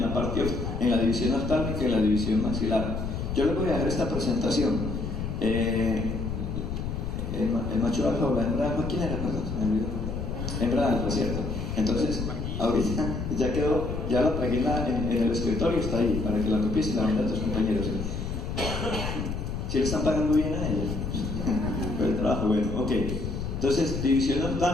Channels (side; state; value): left; noise; rumble, 4 dB below the sound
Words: la división oftálmica y en la división maxilar. Yo les voy a dejar esta presentación. El macho alfa o la hembra alfa, ¿quién era? Hembra alfa, ¿cierto? Entonces, ahorita ya quedó, ya la pegué en el escritorio, está ahí, para que la copies y la vendas a tus compañeros. ¿Sí le están pagando bien a ellos? El trabajo, bueno, ok. Entonces, división